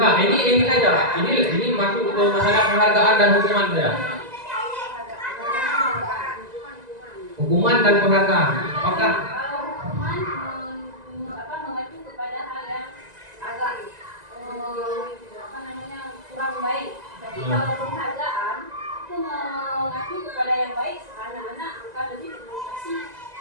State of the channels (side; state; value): left; late; 2.0 ms